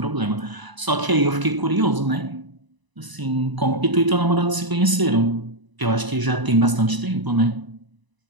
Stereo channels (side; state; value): left; late; 1.0 ms